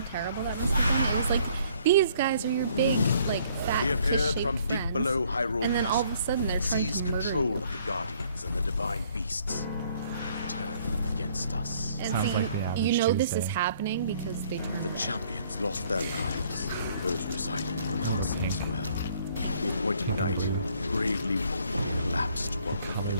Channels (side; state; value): both; inverted; correlation -0.62